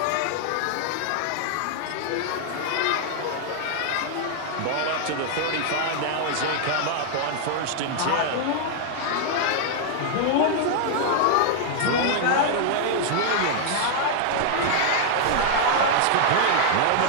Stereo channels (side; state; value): both; different; correlation 0.00